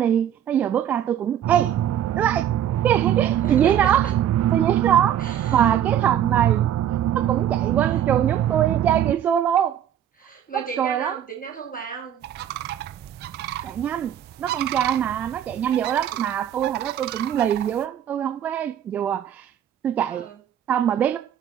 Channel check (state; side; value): quieter; left; 10.2 dB